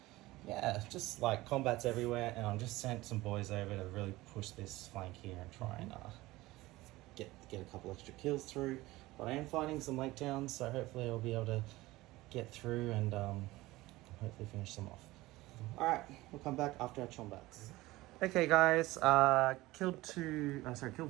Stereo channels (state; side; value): quieter; left; 18.9 dB